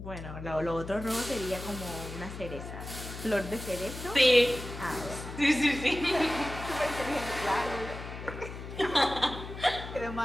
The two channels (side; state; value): left; noise; hum, 10 dB below the sound